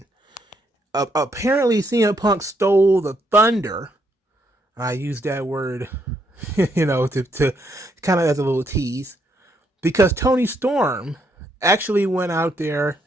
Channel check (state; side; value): normal; both; correlation 0.74